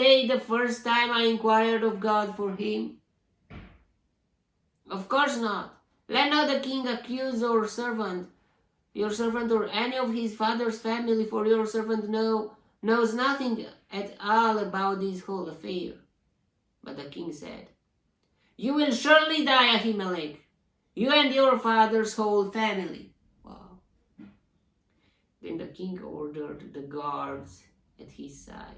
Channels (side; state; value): both; identical; correlation 1.00